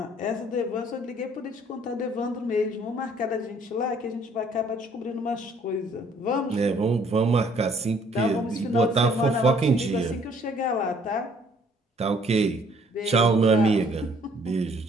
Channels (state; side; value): normal; both; correlation 0.61